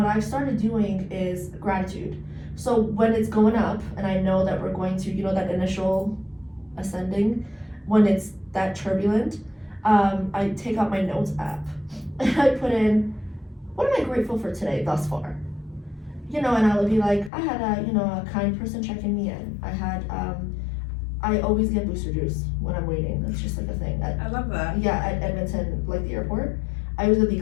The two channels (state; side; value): drops out; right; at 17.3 s